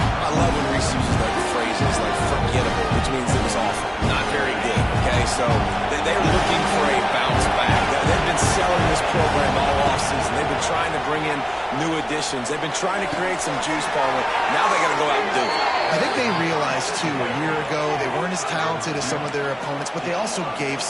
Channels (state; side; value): identical; both; correlation 1.00